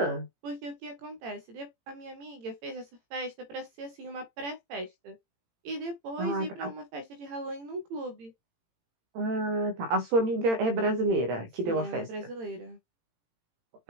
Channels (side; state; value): left; late; 18 ms